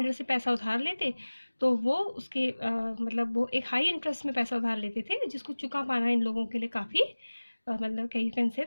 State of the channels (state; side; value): inverted; both; correlation -1.00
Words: से पैसा उधार लेते तो वो उसके मतलब वो एक हाई इंटरेस्ट में पैसा उधार लेते थे, जिसको चुका पाना इन लोगों के लिए काफ़ी मतलब कहीं कैन